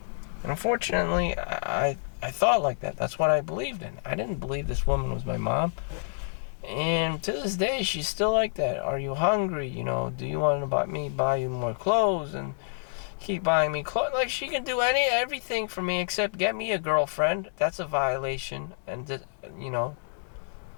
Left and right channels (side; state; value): right; silent; digital silence